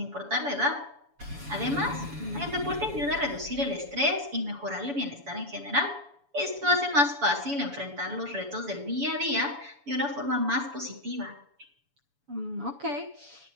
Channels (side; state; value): left; late; 7.0 ms